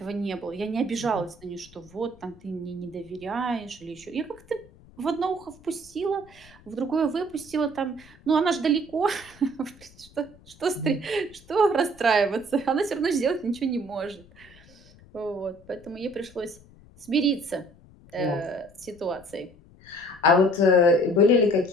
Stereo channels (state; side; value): noise; left; rumble, 24 dB below the sound